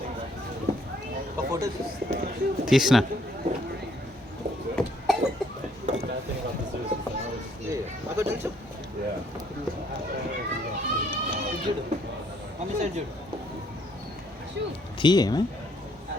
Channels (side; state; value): both; normal; correlation 0.66